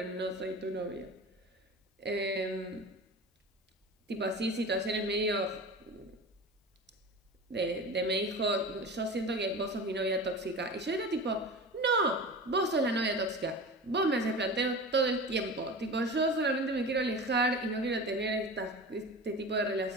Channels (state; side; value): normal; both; correlation 0.33